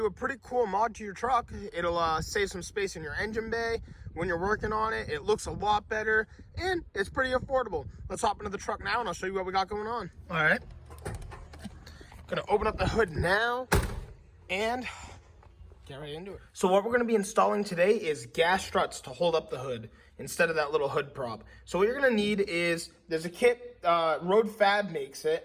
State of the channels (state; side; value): identical; both; correlation 1.00